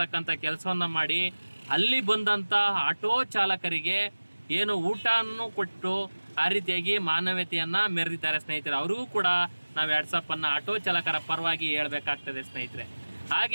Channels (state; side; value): inverted; both; correlation -1.00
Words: ಕೆಲಸವನ್ನು ಮಾಡಿ ಅಲ್ಲಿ ಬಂದಂಥ ಆಟೋ ಚಾಲಕರಿಗೆ ಏನು ಊಟವನ್ನು ಕೊಟ್ಟು ಆ ರೀತಿಯಾಗಿ ಮಾನವೀಯತೆಯನ್ನು ಮೆರೆದಿದ್ದಾರೆ ಸ್ನೇಹಿತರೆ. ಅವ್ರಿಗೂ ಕೂಡ ನಾವು 2 ಸಾವಿರನ ಆಟೋ ಚಾಲಕರ ಪರವಾಗಿ ಹೇಳಬೇಕಾಗ್ತದೆ ಸ್ನೇಹಿತರೆ.